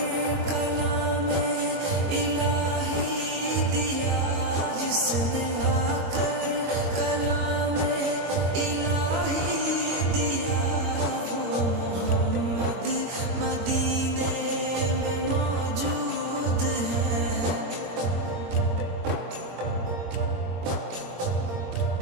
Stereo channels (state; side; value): late; left; 22 ms